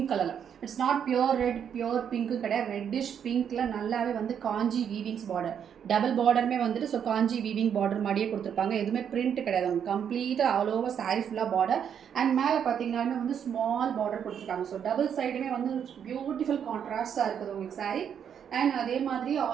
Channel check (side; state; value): left; quieter; 8.2 dB